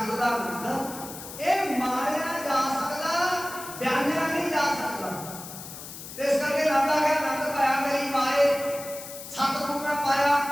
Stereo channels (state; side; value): noise; left; hiss, 12 dB below the sound